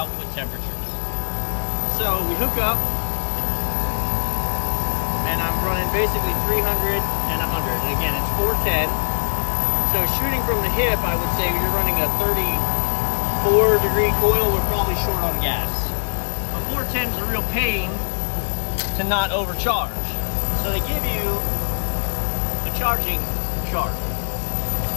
temperatures. So we hook up, and I'm running basically 300 and 100. And again, it's 410. So shooting from the hip, I would say you're running a 34 degree coil. We're probably short on gas. But 410 is a real pain to not overcharge. So they give you a charging chart.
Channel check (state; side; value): silent; right; digital silence